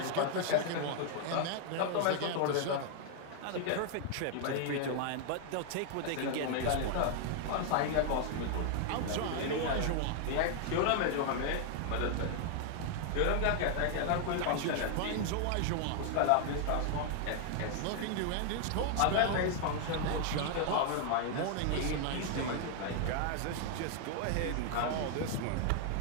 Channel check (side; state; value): both; different; correlation 0.00